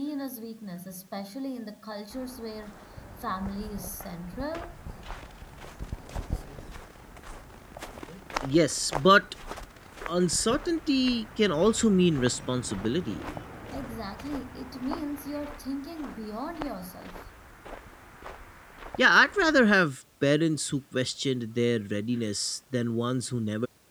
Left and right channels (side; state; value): both; identical; correlation 1.00